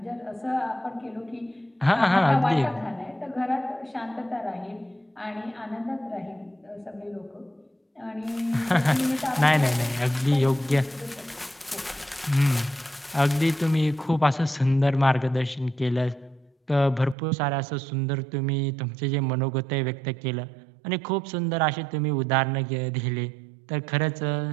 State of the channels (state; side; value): drops out; left; at 17.2 s